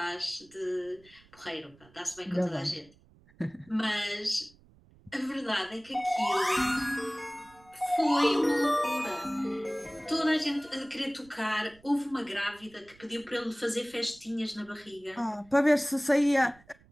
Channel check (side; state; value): right; noise; rumble, 27 dB below the sound